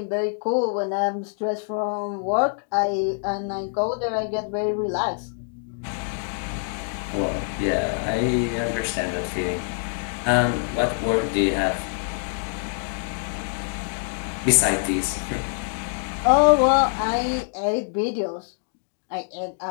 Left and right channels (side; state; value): right; silent; digital silence